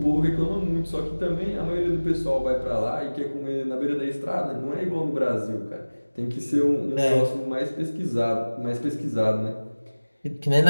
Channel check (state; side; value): inverted; both; correlation -1.00